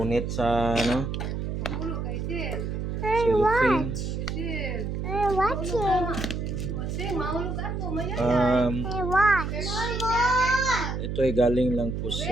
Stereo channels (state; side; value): noise; right; hum, 3 dB below the sound